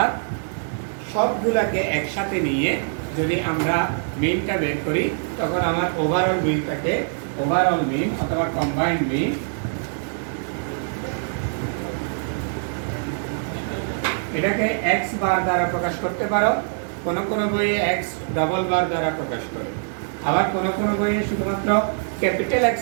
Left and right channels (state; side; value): silent; left; digital silence